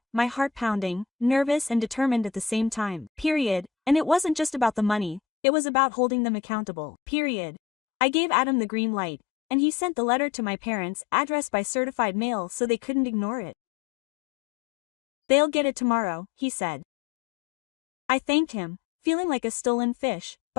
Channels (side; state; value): right; drops out; at 5.2 s